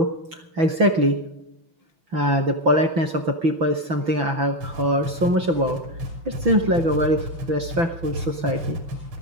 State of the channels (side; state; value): left; late; 6.0 ms